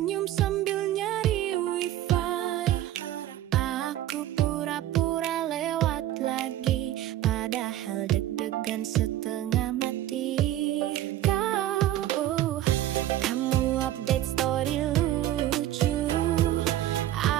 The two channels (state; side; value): quieter; left; 13.3 dB